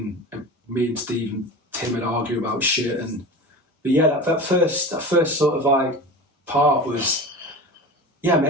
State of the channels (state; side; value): normal; both; correlation 0.31